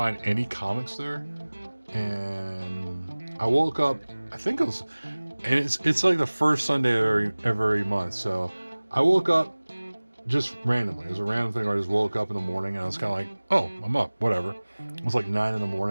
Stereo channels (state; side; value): inverted; both; correlation -1.00